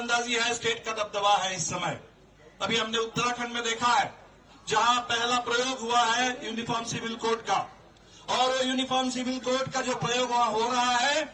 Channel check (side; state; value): both; identical; correlation 1.00